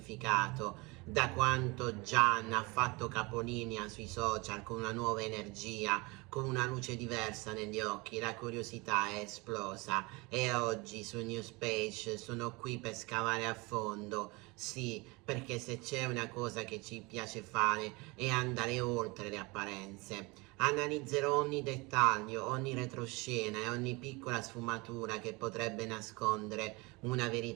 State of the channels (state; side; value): quieter; left; 25.7 dB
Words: Da quanto Gian ha fatto capolinea sui social con una nuova energia, con una luce diversa negli occhi, la curiosità è esplosa e oggi su Newspage sono qui per scavare a fondo. Sì, perché se c'è una cosa che ci piace fare è andare oltre le apparenze. Analizzerò ogni dettaglio, ogni retroscena e ogni piccola sfumatura che potrebbe nascondere una